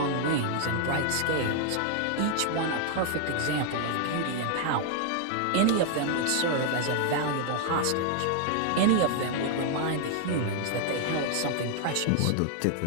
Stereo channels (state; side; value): different; both; correlation 0.00